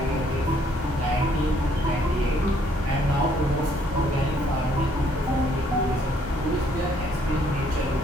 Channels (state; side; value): normal; both; correlation 0.66